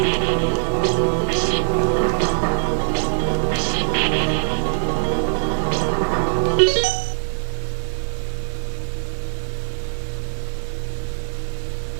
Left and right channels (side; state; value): left; silent; 59 dB below the other